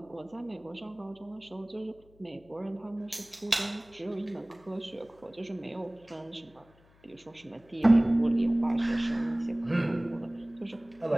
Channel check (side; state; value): left; noise; hum, 28 dB below the sound